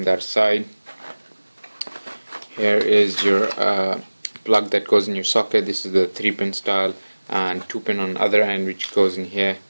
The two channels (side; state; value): both; inverted; correlation -1.00